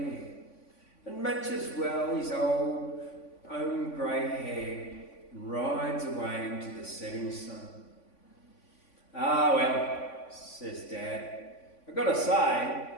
and matches well his old own grey hair and rides away into the setting sun. "Ah, well," says Dad, "I've got to say,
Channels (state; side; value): late; right; 3.5 ms